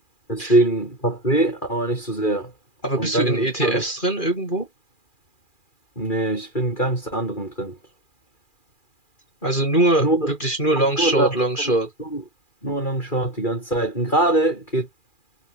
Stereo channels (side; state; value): right; late; 2.4 ms